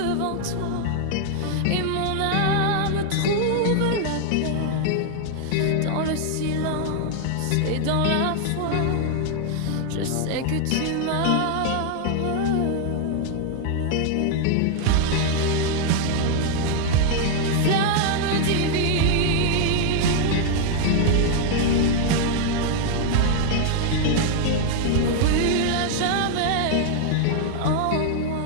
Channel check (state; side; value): different; both; correlation 0.00